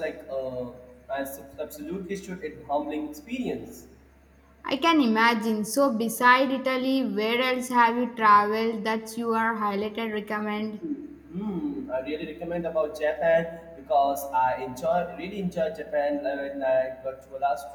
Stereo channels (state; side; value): identical; both; correlation 1.00